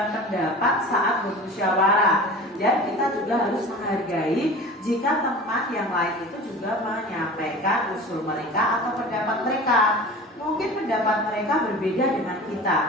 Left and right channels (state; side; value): normal; both; correlation 0.37